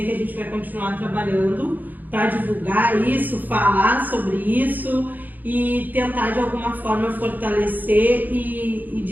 que a gente vai continuar trabalhando para divulgar isso, falar sobre isso e tentar de alguma forma fortalecer e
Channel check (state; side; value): late; left; 0.085 ms